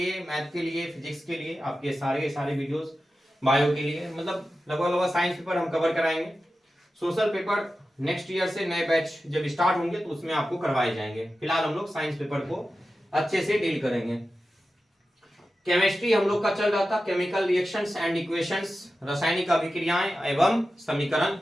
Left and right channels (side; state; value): both; normal; correlation 0.93